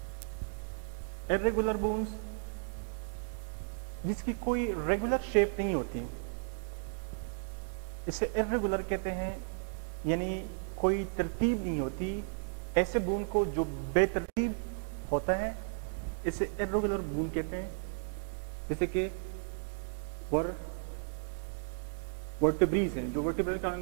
इर्रेगुलर बोन्स जिसकी कोई रेगुलर शेप नहीं होती, इसे इर्रेगुलर कहते हैं, यानी कोई तरतीब नहीं होती। ऐसे बोन को जो बेतरतीब होता है इसे इर्रेगुलर बोन कहते हैं। जैसे कि वर्टिब्रीज हैं, जो वर्टिब्रल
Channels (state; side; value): silent; left; digital silence